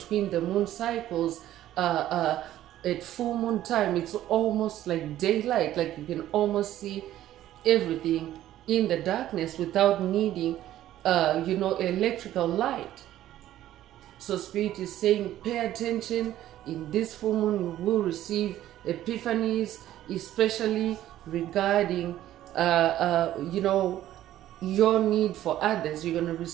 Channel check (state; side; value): quieter; left; 13.1 dB